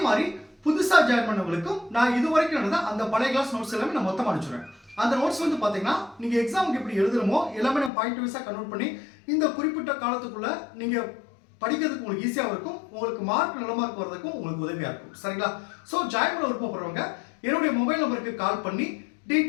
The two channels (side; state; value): right; drops out; at 7.9 s